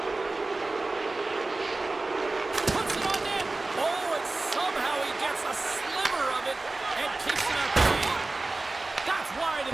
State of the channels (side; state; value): left; quieter; 3.2 dB